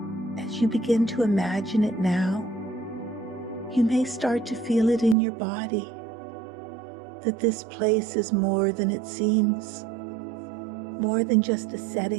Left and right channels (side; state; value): left; drops out; at 5.2 s